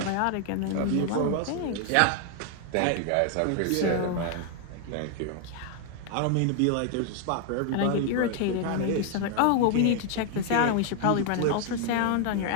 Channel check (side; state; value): both; different; correlation 0.00